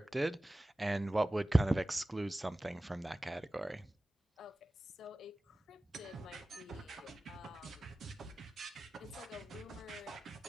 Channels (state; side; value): normal; both; correlation 0.96